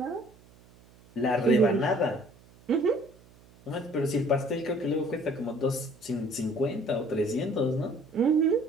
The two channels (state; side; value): noise; right; hum, 26 dB below the sound